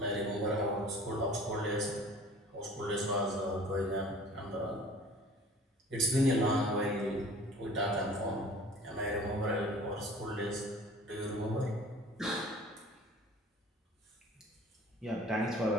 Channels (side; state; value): both; normal; correlation 0.47